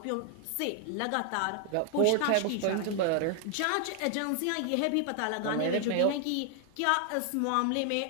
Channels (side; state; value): both; different; correlation 0.00